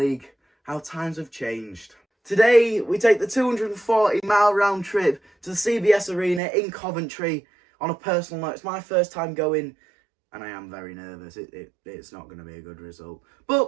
How times have changed. Today, we take the 240-mile round trip to the CBS Arena in Coventry. On a personal note, it's my first time going, and I am very nervous. It's not going to be a good result.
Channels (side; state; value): left; drops out; at 6.4 s